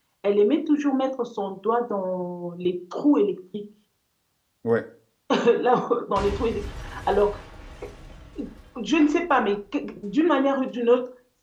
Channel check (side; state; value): both; identical; correlation 1.00